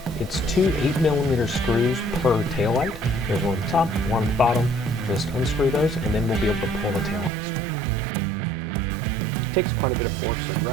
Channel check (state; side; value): drops out; left; at 7.3 s